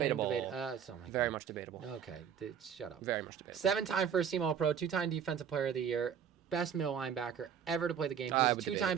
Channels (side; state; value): left; quieter; 8.0 dB